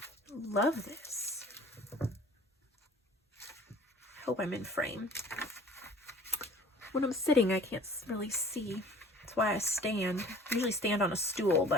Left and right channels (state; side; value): normal; both; correlation 0.48